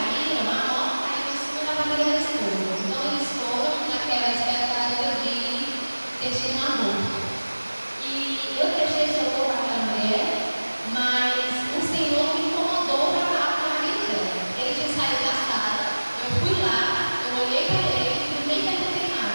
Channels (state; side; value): inverted; both; correlation -1.00